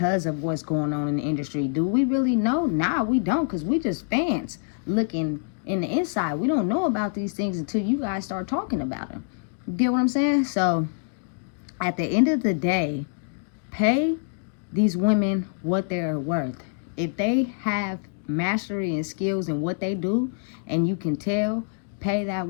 of what's going on in the industry. Do we really know? Nah, we don't, because we just fans looking in the inside. We don't know about these things until you guys start talking about them. You get what I'm saying? So at the end of the day, pay these women what they're worth. If they have mastery and skills in what they do and you can tell, pay that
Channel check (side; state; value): right; silent; 61 dB below the other